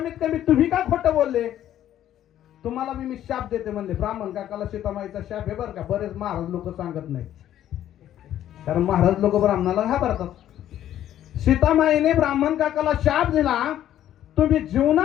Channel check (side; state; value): right; quieter; 11.7 dB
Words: कमी तुम्ही का खोटं बोलले? तुम्हाला मी शाप देते म्हणले. ब्राह्मण काकाला सीतामाईचा शाप आहे बरं का, बरेच महाराज लोक सांगत नाही, कारण महाराज लोक ब्राह्मणाला घाबरतात. सीतामाईने ब्राह्मण काकाला शाप दिला, तुम्ही